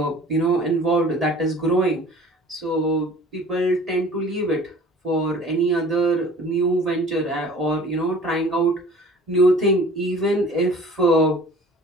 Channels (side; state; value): both; normal; correlation 0.47